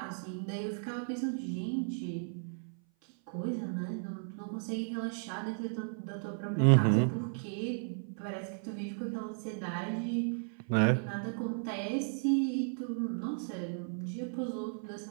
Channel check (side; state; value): left; silent; 55 dB below the other